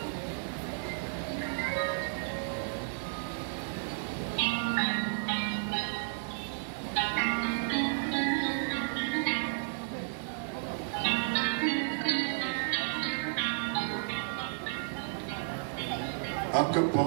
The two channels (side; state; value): left; silent; digital silence